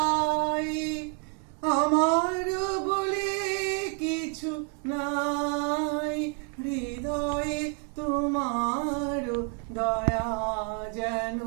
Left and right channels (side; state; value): left; quieter; 37.7 dB